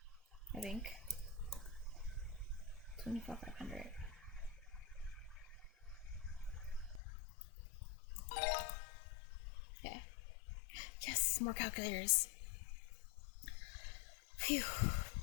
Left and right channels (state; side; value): drops out; right; at 7.0 s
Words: I think. 24,500. Yeah. Yes, more calculators. Phew.